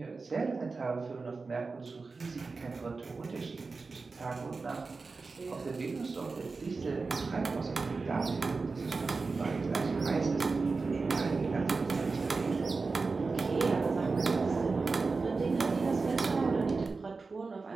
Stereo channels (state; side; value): quieter; left; 4.2 dB